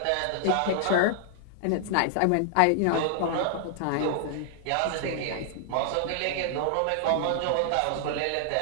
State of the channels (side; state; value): both; different; correlation -0.01